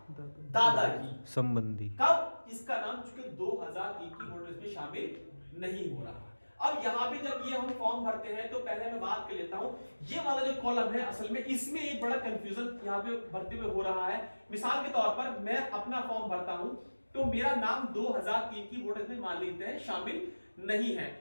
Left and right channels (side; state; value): both; inverted; correlation -1.00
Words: दादा की संबंधी। कब इसका नाम चूंकि 2003 की वोटर लिस्ट में शामिल नहीं हो रहा। अब यहां पे जब ये हम फॉर्म भरते हैं तो पहले मैं बात कर लेता हूं, ये वाला जो कॉलम है असल में इसमें एक बड़ा कंफ्यूजन यहां पे भरते हुए हो रहा है। मिसाल के तौर पर मैं अपना फॉर्म भरता हूं तो मेरा नाम 2003 की वोटर लिस्ट में मान लेते हैं शामिल नहीं है,